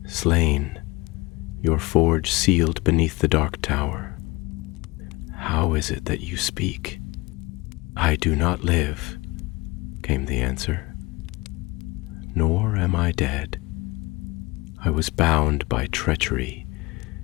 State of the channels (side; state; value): right; quieter; 22.7 dB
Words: slain, your forge sealed beneath the dark tower. How is it that you speak?" "I do not live," came the answer. "Nor am I dead. I was bound by treachery,